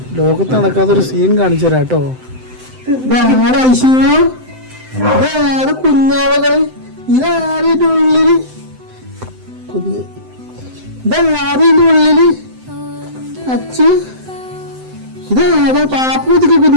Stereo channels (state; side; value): late; left; 7.8 ms